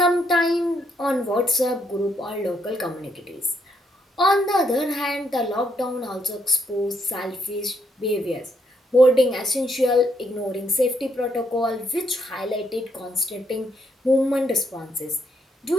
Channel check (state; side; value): normal; both; correlation 0.75